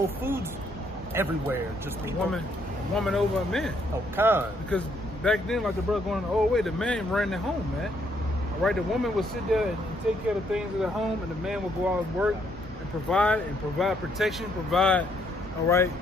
foods everywhere. Just a woman over a man. Oh, kind. Because back then, like the brother going the old way, the man ran the home, man. All right, the woman would sit there and take care of the things of the home, and the man would go out and work and provide protection, provide, all right,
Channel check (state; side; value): normal; both; correlation 0.71